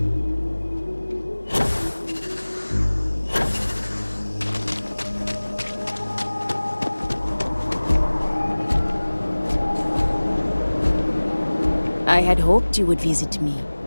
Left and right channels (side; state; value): both; inverted; correlation -1.00